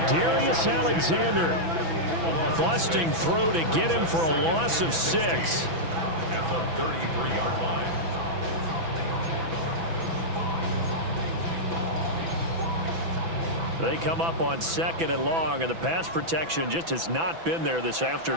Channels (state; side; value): late; left; 6.0 ms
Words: Darius Alexander busting through to get him for a loss of 6. At the 33-yard line. They come up on 2nd and long, and the pass protection just has not been there this